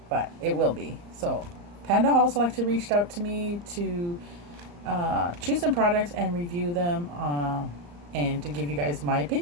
but it will be. So, PandaHallSelected reached out to me to choose some products and review them and to give you guys my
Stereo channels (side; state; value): left; late; 34 ms